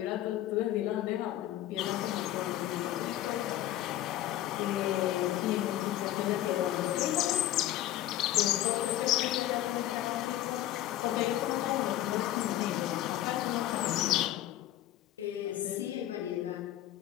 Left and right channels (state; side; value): quieter; right; 13.5 dB